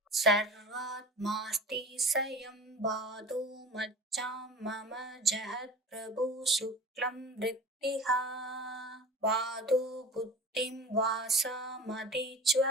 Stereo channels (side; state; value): both; normal; correlation 0.37